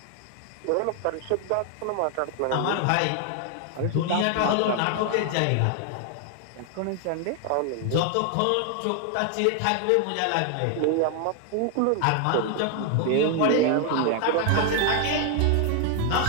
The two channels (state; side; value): different; both; correlation 0.00